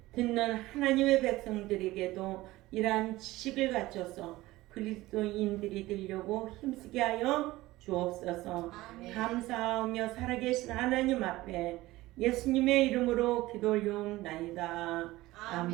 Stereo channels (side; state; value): left; quieter; 18.2 dB